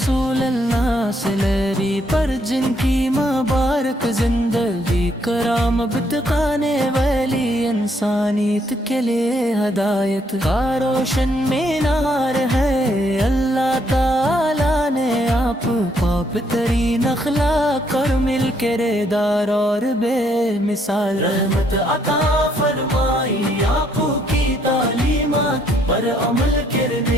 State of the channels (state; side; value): normal; both; correlation 0.70